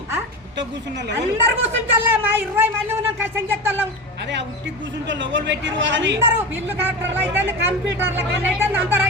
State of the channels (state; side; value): normal; both; correlation 0.25